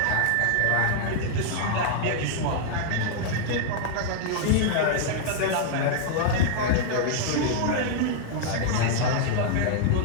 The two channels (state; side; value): different; both; correlation 0.00